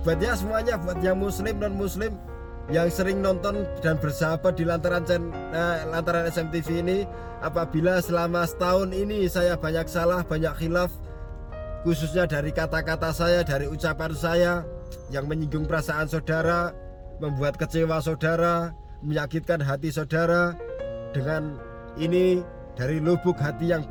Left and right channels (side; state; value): both; identical; correlation 1.00